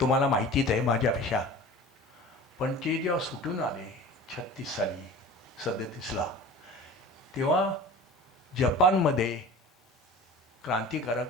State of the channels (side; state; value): both; normal; correlation 0.39